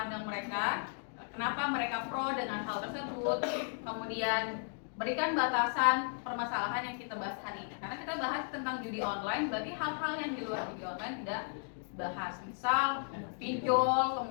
mereka, kenapa mereka pro dengan hal tersebut, kemudian berikan batasan permasalahan yang kita bahas hari ini. Karena kita bahas tentang judi online, berarti hal-hal yang di luar judi online tidak bahas. Misal pinjol,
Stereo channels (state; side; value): silent; right; 54 dB below the other